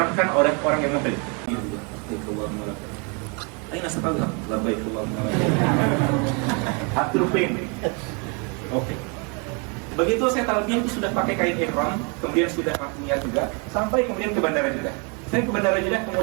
oleh orang yang muhrim. Aina satallah labbaik Allahumma labbaik. Oke. Begitu saya talbiyah itu sudah pakai kain ihram, kemudian sudah niat juga, sampai kemudian ke bandara Jeddah. Saya ke bandara Jeddah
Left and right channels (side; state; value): left; quieter; 34.4 dB